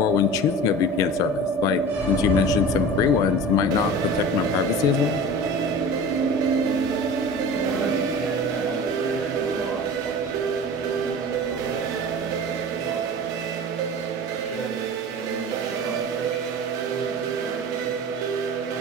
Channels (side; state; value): both; normal; correlation 0.36